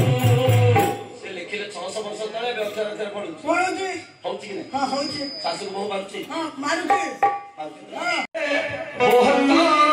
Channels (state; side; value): identical; both; correlation 1.00